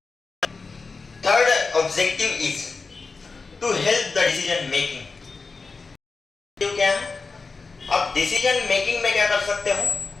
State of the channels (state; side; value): quieter; right; 4.3 dB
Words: Third objective is to help the decision making. क्या है, आप डिसीजन मेकिंग में क्या कर सकते हो,